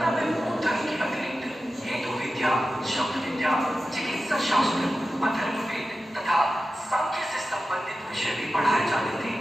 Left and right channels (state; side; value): normal; both; correlation 0.93